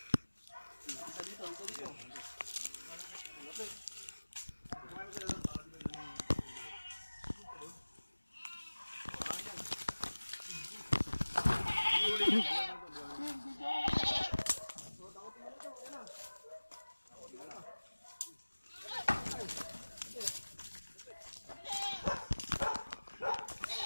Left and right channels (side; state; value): both; inverted; correlation -1.00